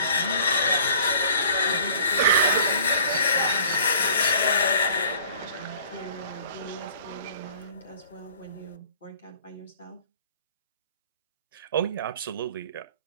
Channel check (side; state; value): both; inverted; correlation -0.52